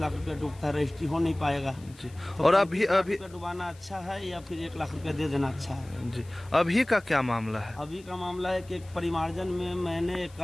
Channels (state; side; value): noise; left; hiss, 25 dB below the sound